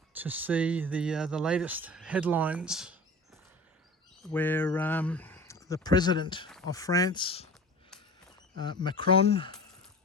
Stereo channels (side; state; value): both; normal; correlation 0.37